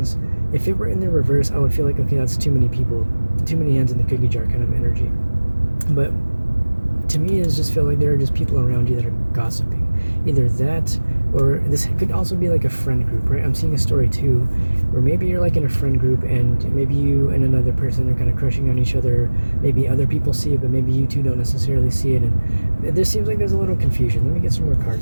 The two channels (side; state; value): both; inverted; correlation -1.00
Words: if it were in the reverse, I would feel like, okay, that's too many people, too many hands in the cookie jar kind of energy. But to me, it just feel like there are just people around you that are gossiping. Either that, or this could also be like a friend group, right? I'm seeing a story too, where maybe you're like in a friend group, and maybe you and another person are kind of crushing on each other. Maybe other people see it, but maybe you two don't necessarily see it. And this seems like there's a little confusion. Let me get some more